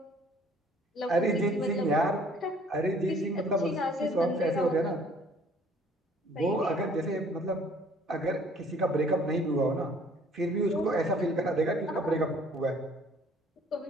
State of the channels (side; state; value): both; normal; correlation 0.56